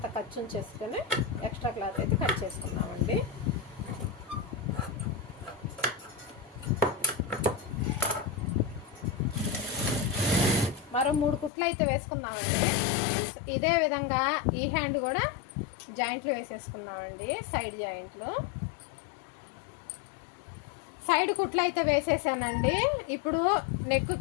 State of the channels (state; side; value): drops out; right; at 11.5 s